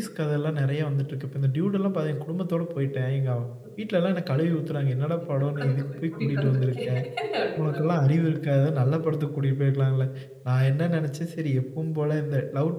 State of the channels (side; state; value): both; identical; correlation 1.00